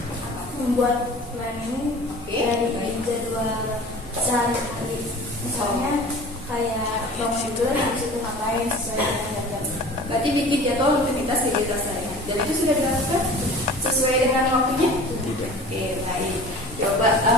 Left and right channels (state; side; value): normal; both; correlation 0.41